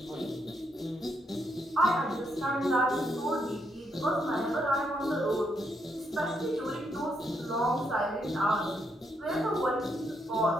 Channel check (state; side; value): normal; both; correlation 0.77